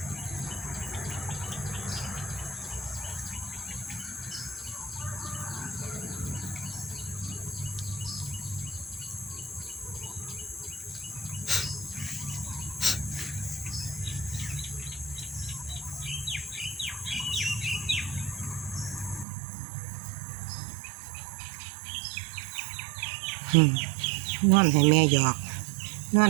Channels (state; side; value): drops out; left; at 19.2 s